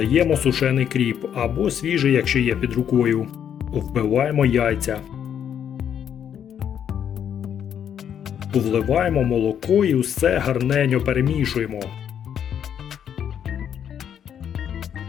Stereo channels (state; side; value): quieter; right; 8.9 dB